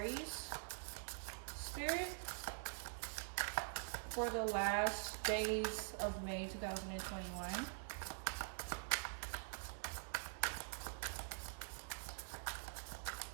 Spirit, for the last days of May 2021.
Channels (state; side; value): silent; left; digital silence